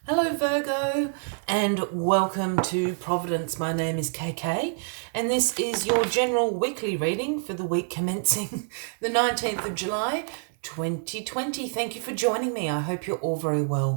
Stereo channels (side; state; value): left; silent; 60 dB below the other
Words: Hello Virgo and welcome to Providence. My name is KK and this is your general weekly reading for the week commencing the 19th of July 2020. Thank you for joining me. I hope you're all very